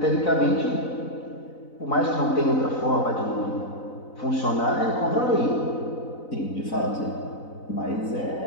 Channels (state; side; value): late; right; 4.0 ms